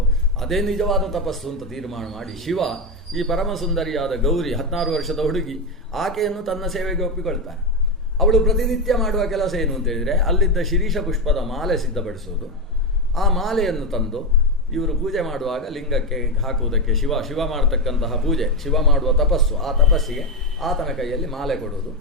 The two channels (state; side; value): normal; both; correlation 0.09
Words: ಅದೇ ನಿಜವಾದ ತಪಸ್ಸು ಅಂತ ತೀರ್ಮಾನ ಮಾಡಿ ಶಿವ ಈ ಪರಮ ಸುಂದರಿಯಾದ ಗೌರಿ 16 ವರ್ಷದ ಹುಡುಗಿ, ಆಕೆಯನ್ನು ತನ್ನ ಸೇವೆಗೆ ಒಪ್ಪಿಕೊಳ್ತಾನೆ. ಅವಳು ಪ್ರತಿನಿತ್ಯ ಮಾಡುವ ಕೆಲಸ ಏನು ಅಂತೇಳಿದರೆ, ಅಲ್ಲಿದ್ದ ಶಿರೀಷ ಪುಷ್ಪದ ಮಾಲೆ ಸಿದ್ಧಪಡಿಸೋದು. ಆ ಮಾಲೆಯನ್ನು ತಂದು ಇವರು ಪೂಜೆ ಮಾಡುವಾಗ ಲಿಂಗಕ್ಕೆ ಹಾಕುವುದಕ್ಕೆ ಶಿವ ಮಾಡತಕ್ಕಂತಹ ಪೂಜೆ, ಶಿವ ಮಾಡುವ ತಪಸ್ಸು, ಆ ತಪಸ್ಸಿಗೆ ಆತನ ಕೈಯಲ್ಲಿ ಮಾಲೆ ಕೊಡುವುದು.